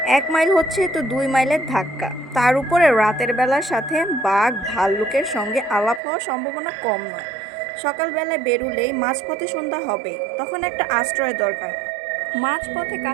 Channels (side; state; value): left; drops out; at 6.0 s